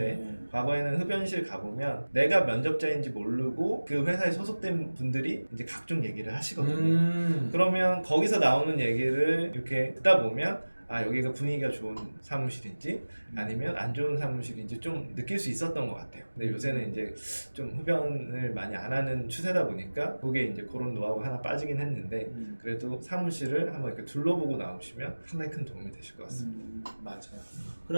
네. 과거에는 흡연실 가보면 내가 면접자인지 모르고 그 회사에 소속된 분들이 이제 각종 얘기를 하시거든요. 그러면 거기서 나오는 얘기를 이렇게 듣다 보면 아 여기가 분위기가 좋은 사무실인지 아니면 안 좋은 사무실인지 좀 느낄 수 있었던 것 같아요. 근데 요새는 이제 좀 흡연을 많이 안 하는 추세다 보니까 그게 이제 그런 노하우가 하나 빠지긴 했는데 그래도 사무실을 한번 이렇게 둘러보고 나오시면 상당히 큰 도움이 되실 것 같습니다. 맞아요.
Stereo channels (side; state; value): both; inverted; correlation -1.00